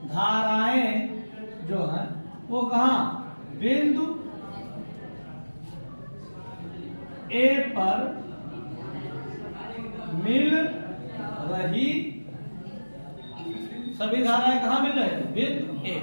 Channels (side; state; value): both; inverted; correlation -1.00